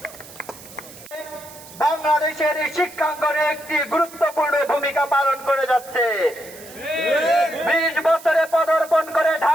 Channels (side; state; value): right; noise; hiss, 18 dB below the sound